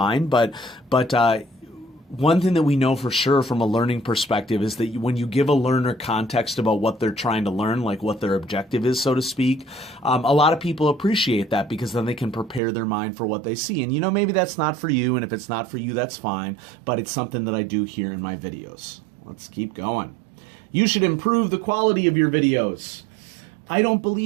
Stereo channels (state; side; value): drops out; left; at 12.6 s